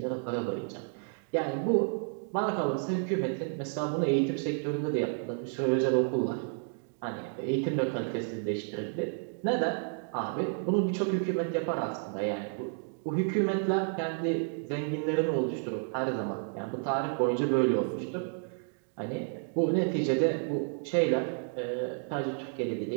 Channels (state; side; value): silent; left; 57 dB below the other